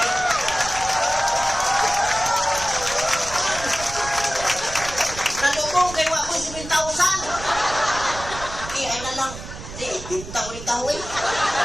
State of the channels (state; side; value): noise; right; rumble, 12 dB below the sound